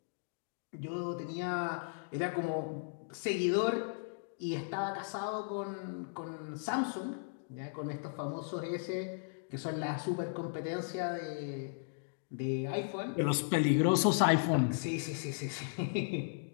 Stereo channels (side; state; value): right; silent; digital silence